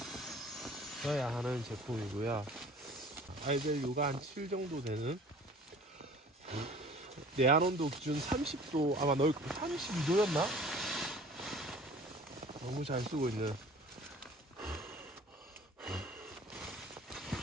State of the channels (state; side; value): normal; both; correlation 0.47